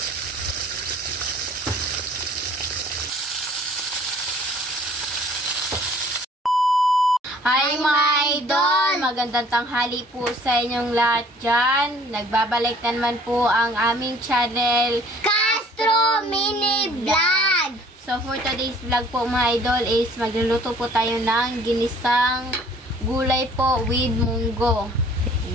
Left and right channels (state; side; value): normal; both; correlation 0.54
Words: Hi mga idol! Magandang tanghali po sa inyong lahat dyan. Nagbabalik na naman po ang aming channel, Castro Mini Vlog! So for today's vlog po mga idol is magluluto po tayo ng ginisang gulay po with munggo.